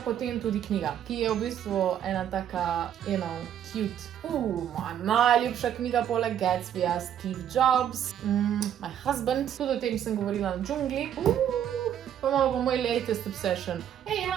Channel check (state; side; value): quieter; left; 9.9 dB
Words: potem tudi knjiga, ki je v bistvu ena taka, cute. Moja najljubša knjiga poleg Gatsbyja, Steve Jobs, My Husband, tudi o tem sem govorila na džungli. Pa imamo pa moj latest obsession. Mi